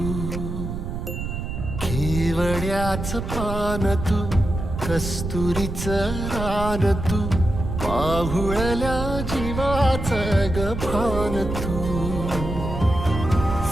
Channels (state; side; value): noise; right; rumble, 5 dB below the sound